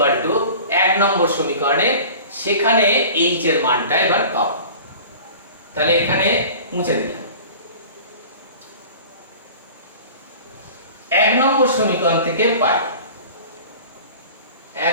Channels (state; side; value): inverted; both; correlation -0.41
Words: two 1 নম্বর সমীকরণে, সেখানে h এর মানটা এবার পাবো, তাহলে এখানে মুছে দিলাম। 1 নম্বর সমীকরণ থেকে পাই,